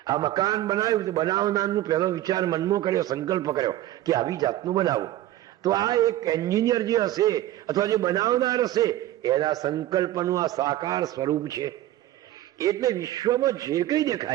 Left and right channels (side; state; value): left; quieter; 14.3 dB